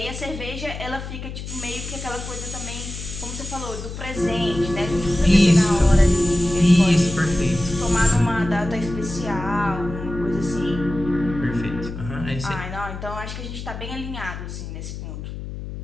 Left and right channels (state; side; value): noise; left; hum, 9 dB below the sound